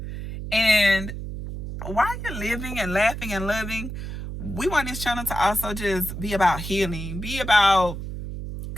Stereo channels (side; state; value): right; noise; hum, 7 dB below the sound